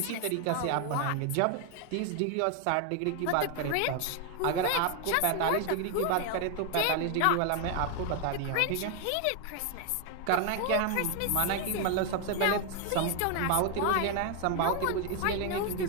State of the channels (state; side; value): different; both; correlation 0.01